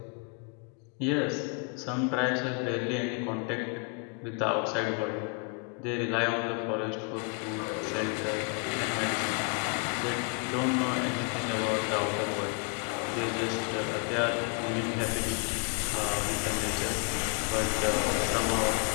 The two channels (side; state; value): right; quieter; 36.4 dB